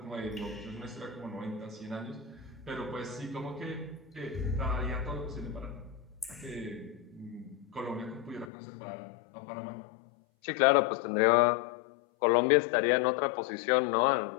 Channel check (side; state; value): right; drops out; at 8.5 s